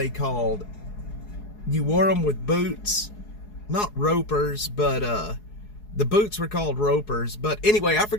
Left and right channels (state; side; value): late; right; 4.7 ms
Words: called? You wore them with boots, not ropers, but the boots were called ropers. But anyway, I